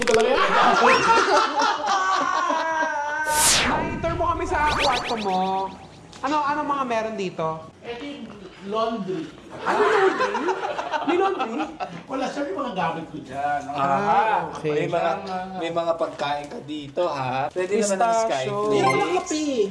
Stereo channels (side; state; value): both; identical; correlation 1.00